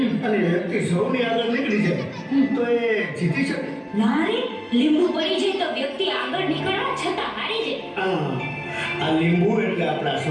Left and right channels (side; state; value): both; identical; correlation 1.00